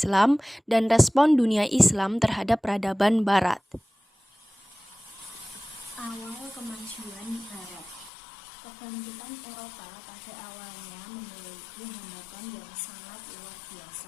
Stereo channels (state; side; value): drops out; right; at 8.1 s